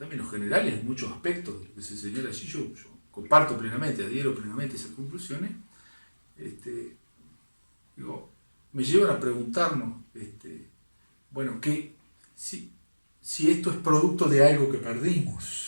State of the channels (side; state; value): both; inverted; correlation -1.00